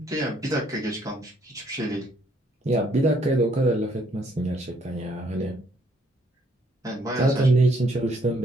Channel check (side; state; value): both; normal; correlation 0.67